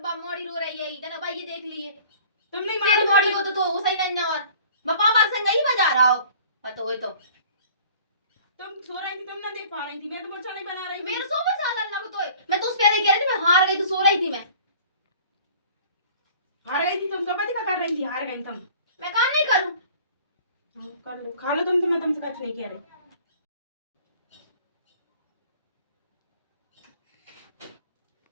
मोड़ी रो रही है इतना भाई, ये देख लिए तुम नहीं तेरी मारो मोड़ी को तो वो सही नहीं। और पापा संग ही बजा रहा हो पता हो तो तुम सो रही थी, तुम ना देख पा रही थी, मैं तो मुर्चा नहीं बना रही थी। मेरे सो में साल लग तो है। मैं तो उस पहले कह रही थी मैं हार गई, तो सो रही थी मैं। हार गई थी तुम, कब क्या कर रही थी? हार गई तुम। मैं काम नहीं करूं। कर लो, खा लो तुम, तो मैं तुमसे कुछ नहीं कह रही।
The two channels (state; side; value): inverted; both; correlation -0.49